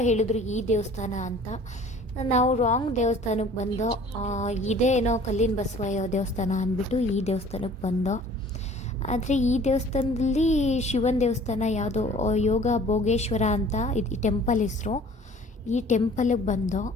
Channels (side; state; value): both; normal; correlation 0.50